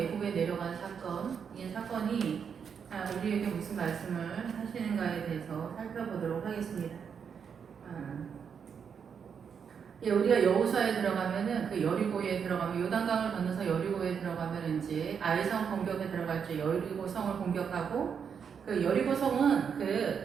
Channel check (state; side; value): quieter; left; 6.9 dB